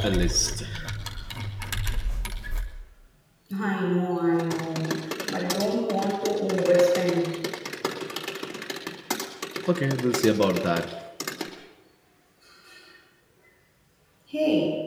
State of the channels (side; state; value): both; identical; correlation 1.00